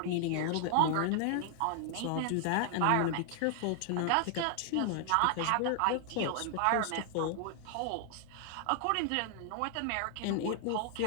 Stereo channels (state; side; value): different; both; correlation 0.00